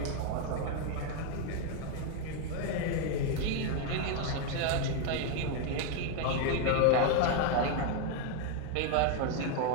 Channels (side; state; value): both; different; correlation 0.01